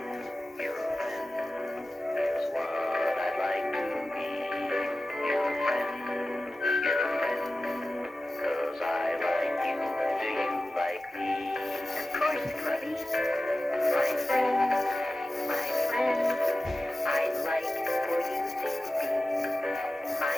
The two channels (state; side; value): normal; both; correlation 0.94